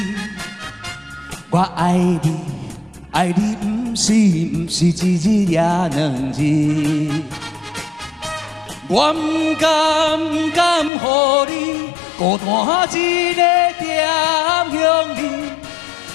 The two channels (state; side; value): drops out; right; at 10.9 s